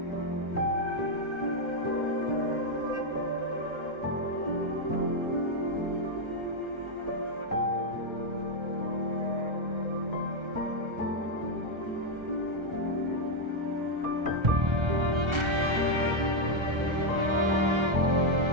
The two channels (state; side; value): late; left; 1.3 ms